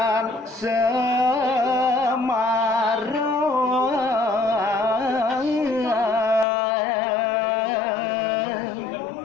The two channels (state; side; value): drops out; right; at 6.5 s